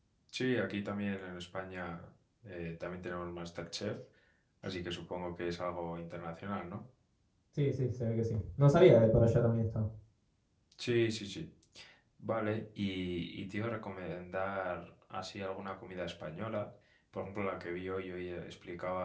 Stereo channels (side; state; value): both; identical; correlation 1.00